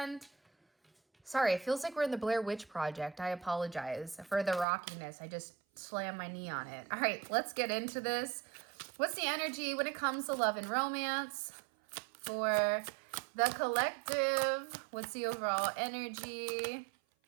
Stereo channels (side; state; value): left; drops out; at 4.7 s